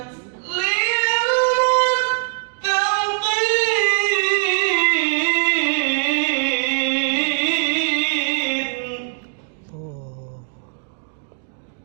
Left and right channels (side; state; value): left; silent; digital silence